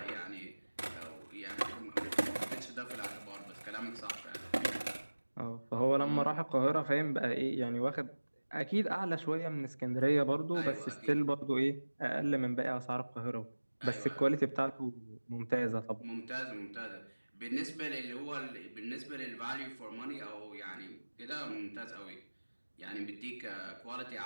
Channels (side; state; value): both; inverted; correlation -1.00